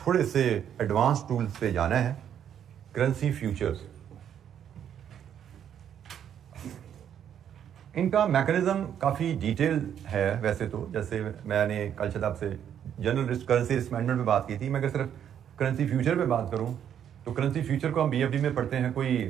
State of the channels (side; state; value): left; quieter; 9.3 dB